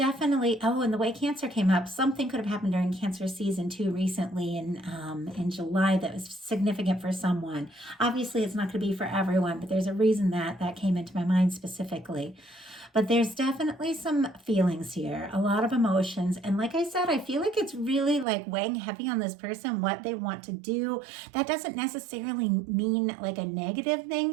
and the way Cancer came up, something could have happened during Cancer season 2 recently in July that was significant for someone. Obviously, it's not going to be for everyone, but there's a reason that came into my mind specifically. but there's definitely some feelings here, a lot of emotions. And like I said, I feel like it's really like weighing heavy on this person, what they want to do. That doesn't necessarily mean like a negative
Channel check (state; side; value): drops out; left; at 18.2 s